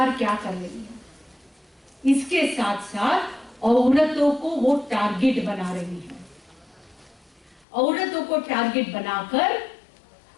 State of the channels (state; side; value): drops out; right; at 7.7 s